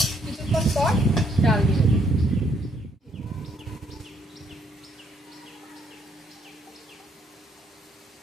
কিছুক্ষণ পর ডাল দিয়ে দেবো।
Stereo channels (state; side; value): normal; both; correlation 0.69